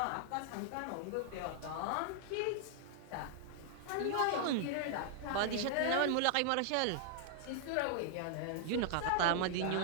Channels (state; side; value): different; both; correlation 0.00